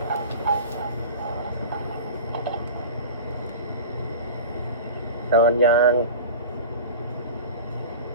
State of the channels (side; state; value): both; inverted; correlation -0.34